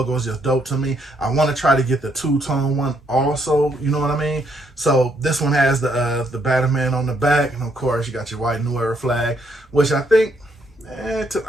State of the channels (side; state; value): both; normal; correlation 0.73